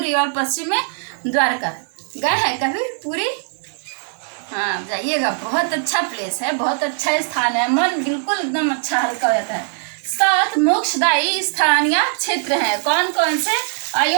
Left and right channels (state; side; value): silent; left; digital silence